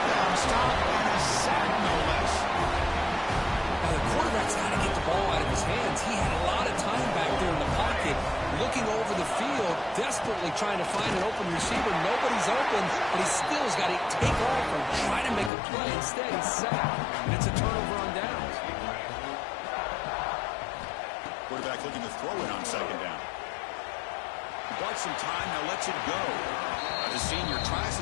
down stop and a sack, no less. Now, the quarterback's got to get the ball out of his hands. He had a lot of time back there in the pocket, looking over the field, desperately trying to find an open receiver. Nobody's open, but he still has got to take off and try to make a play. Instead, he's sacked, and it's a turnover on downs. Quarterback looking to throw it on 2nd down. He bought some time, now lets it go. The senior tries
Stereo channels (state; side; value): drops out; right; at 15.5 s